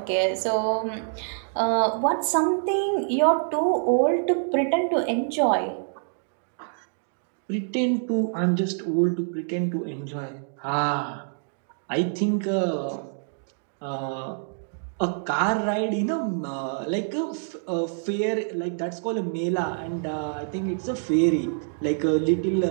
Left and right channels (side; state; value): left; silent; digital silence